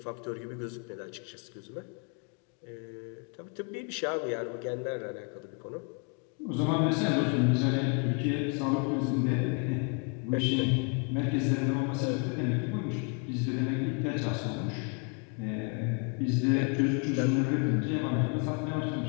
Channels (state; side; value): quieter; right; 34.2 dB